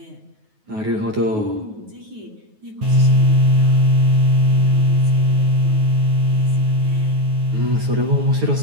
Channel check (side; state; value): left; late; 9.4 ms